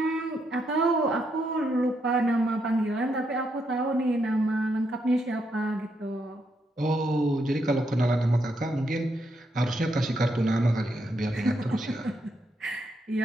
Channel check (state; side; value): normal; both; correlation 0.79